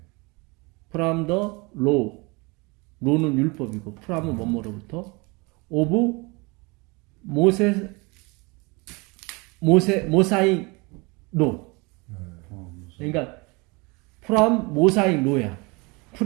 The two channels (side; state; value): left; quieter; 27.4 dB